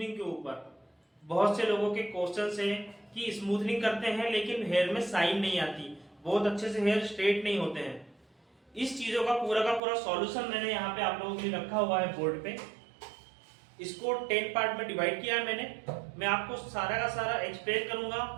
के ऊपर। बहुत से लोगों के क्वेश्चन है कि स्मूथनिंग करते हैं लेकिन हेयर में शाइन नहीं आती, बहुत अच्छे से हेयर स्ट्रेट नहीं होते हैं। इस चीजों का पूरा सॉल्यूशन मैंने यहाँ पे आप लोगों के लिए रखा हुआ है बोर्ड पे। इसको 10 पार्ट में डिवाइड किया है मैंने। मैं आपको सारा का सारा एक्सप्लेन करूंगा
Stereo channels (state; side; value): drops out; left; at 9.8 s